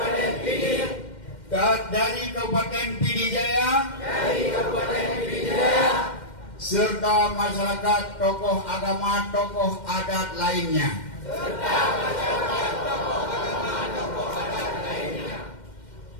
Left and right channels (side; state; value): right; late; 2.1 ms